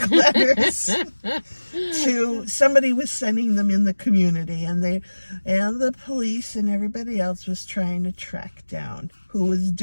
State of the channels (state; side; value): inverted; both; correlation -1.00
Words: letters to somebody was sending them in the community, and the police and everybody else was trying to track down who was